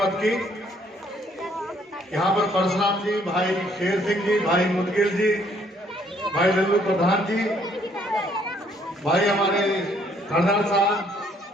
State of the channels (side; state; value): both; normal; correlation 0.65